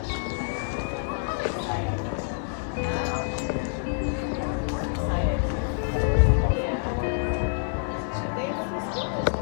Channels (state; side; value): silent; right; digital silence